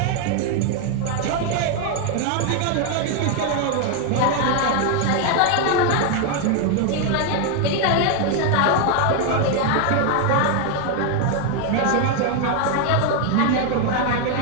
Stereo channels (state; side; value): different; both; correlation 0.01